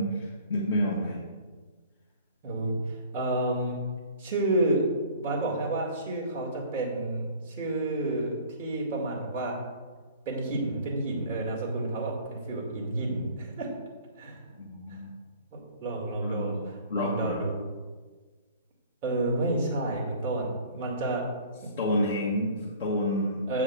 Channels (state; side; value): inverted; both; correlation -0.48